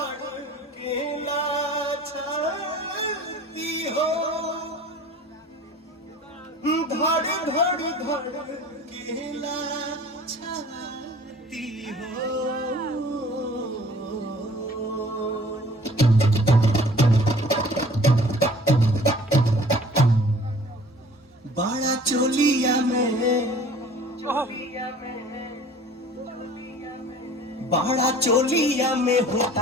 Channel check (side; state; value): both; normal; correlation 0.49